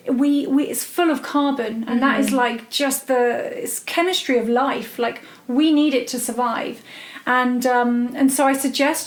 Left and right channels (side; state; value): both; identical; correlation 1.00